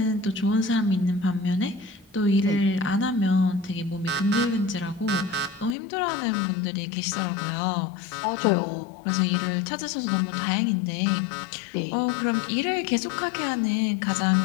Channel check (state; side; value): drops out; right; at 5.8 s